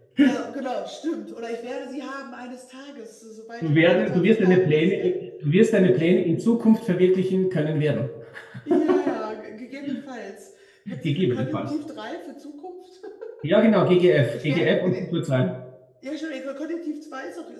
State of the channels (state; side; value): identical; both; correlation 1.00